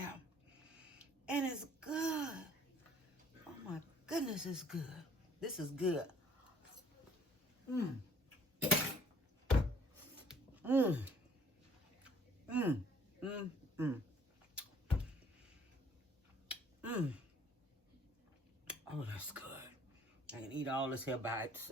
And it's good. Oh my goodness, it's good. This is good. Oh, that's good. I can eat all this here by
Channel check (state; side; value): normal; both; correlation 0.58